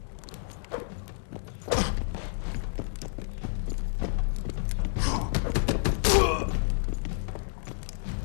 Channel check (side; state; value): right; silent; digital silence